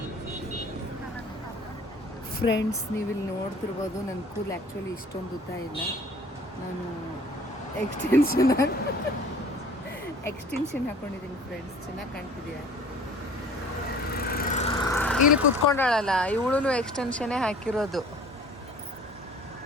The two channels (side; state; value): both; normal; correlation 0.49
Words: ಫ್ರೆಂಡ್ಸ್, ನೀವಿಲ್ಲಿ ನೋಡ್ತಿರ್ಬೋದು, ನನ್ನ ಕೂಲ್ ಆ್ಯಕ್ಚುಲಿ ಇಷ್ಟೊಂದು ಉದ್ದ ಇಲ್ಲ. ನಾನು ಎಕ್ಸ್ಟೆನ್ಷನ್ ಹಾಕೊಂಡಿದ್ದೀನಿ ಫ್ರೆಂಡ್ಸ್. ಚೆನ್ನಾಗಿ ಕಾಣ್ತಿದೆಯಾ? ಇಲ್ಲಿ ಕುತ್ಕೊಂಡಾಳಲ್ಲ, ಇವಳು ಎಕ್ಸ್ಟೆನ್ಷನ್ನೇ ಹಾಕಿರೋದು.